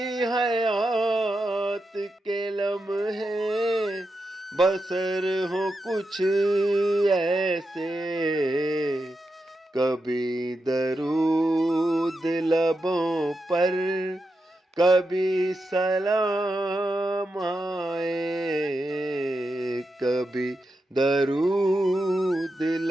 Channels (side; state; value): both; normal; correlation 0.88